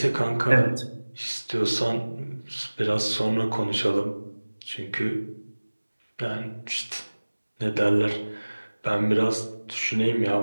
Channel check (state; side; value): inverted; both; correlation -1.00